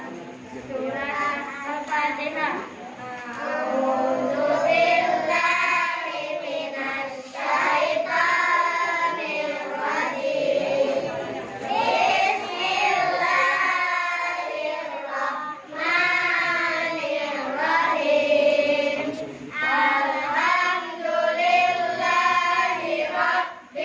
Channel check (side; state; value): both; identical; correlation 1.00